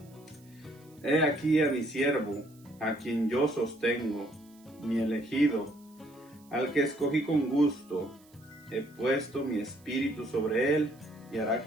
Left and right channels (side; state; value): right; noise; hiss, 29 dB below the sound